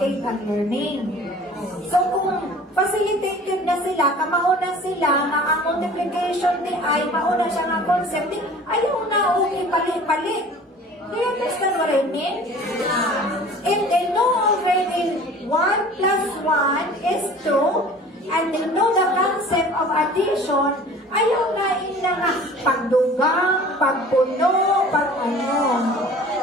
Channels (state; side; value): normal; both; correlation 0.45